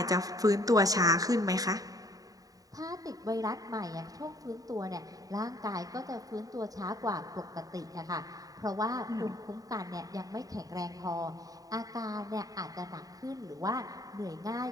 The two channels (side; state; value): left; late; 0.18 ms